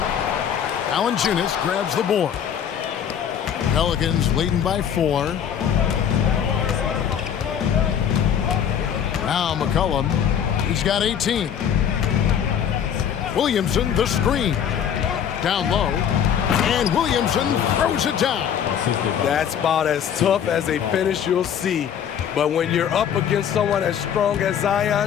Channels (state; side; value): quieter; right; 8.7 dB